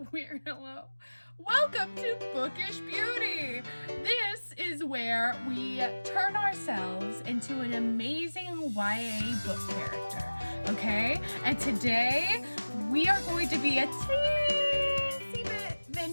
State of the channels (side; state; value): both; inverted; correlation -1.00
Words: weird hello. Welcome to Bookish Beauty. This is where we turn ourselves into an amazing YA book character, okay? And today we are going to be a teensy bit